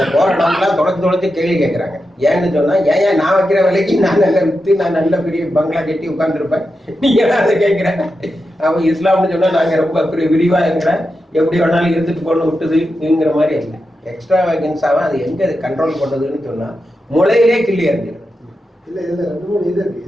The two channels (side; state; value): both; normal; correlation 0.89